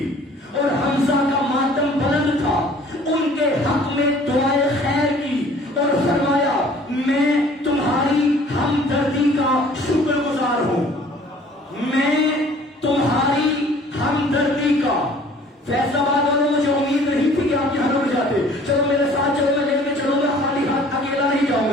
اور حمزہ کا ماتم بلند تھا، ان کے حق میں دعائے خیر کی اور فرمایا میں تمہاری ہمدردی کا شکر گزار ہوں، میں تمہاری ہمدردی کا۔ فیصل آباد والوں مجھے امید نہیں تھی کہ آپ یہاں رک جاتے، چلو میرے ساتھ چلو، میں لے کے چلوں گا، خالی ہاتھ اکیلا نہیں جاؤں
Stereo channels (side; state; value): both; normal; correlation 0.52